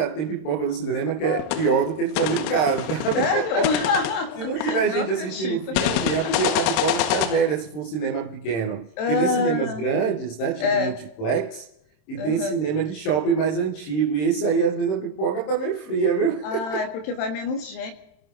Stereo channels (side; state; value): right; late; 26 ms